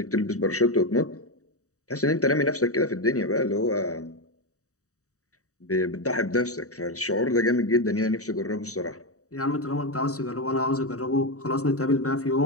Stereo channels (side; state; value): right; late; 0.66 ms